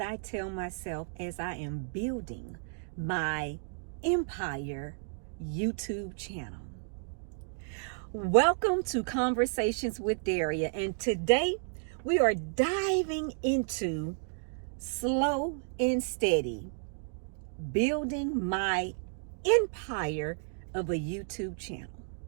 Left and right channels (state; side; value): silent; left; digital silence